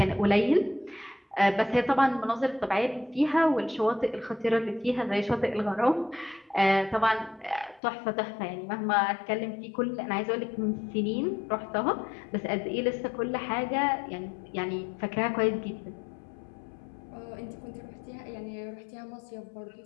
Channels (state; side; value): drops out; right; at 7.8 s